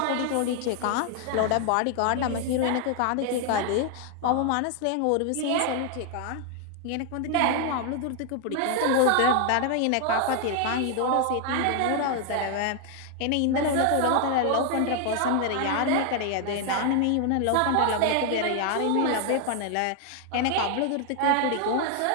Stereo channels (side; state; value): both; different; correlation 0.00